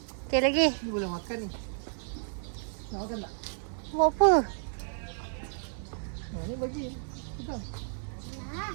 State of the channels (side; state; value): left; silent; 57 dB below the other